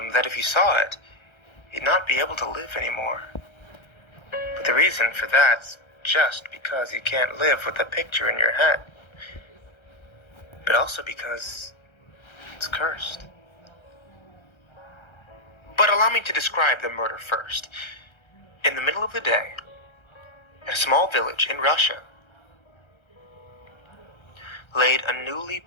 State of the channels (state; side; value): late; right; 1.3 ms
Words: that if you saw it, you'd not be able to live anymore. But the reason for that's just because you can't live with the picture in your head. But also because it's cursed. But allow me to describe the murder first. In the middle of the day, at a small village in Russia, laid a newly